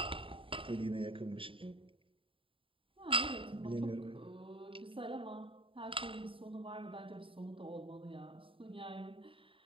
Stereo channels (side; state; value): left; late; 0.25 ms